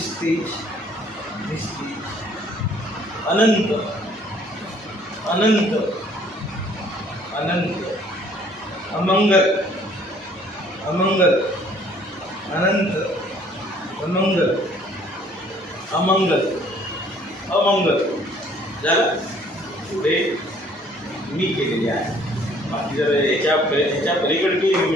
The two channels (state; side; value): normal; both; correlation 0.59